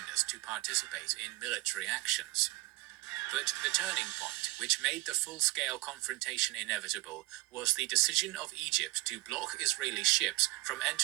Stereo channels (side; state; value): left; quieter; 20.6 dB